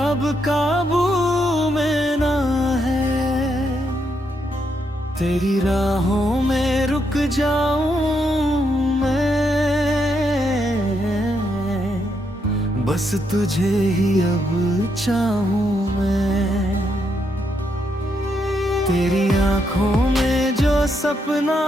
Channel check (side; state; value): both; normal; correlation 0.78